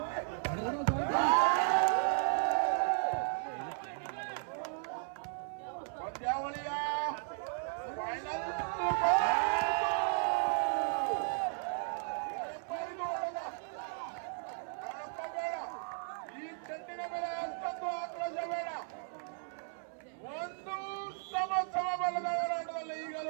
ಪಂದ್ಯಾವಳಿಯ ಫೈನಲ್ ಬೇಡ, ಈ ಚೆಂಡಿನ ಮೇಲೆ ಅಷ್ಟೊಂದು ಆಕ್ರೋಶ ಬೇಡ. ಒಂದು ಸಮ ಬಲದ ಹೋರಾಟದಲ್ಲಿ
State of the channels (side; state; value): left; silent; 54 dB below the other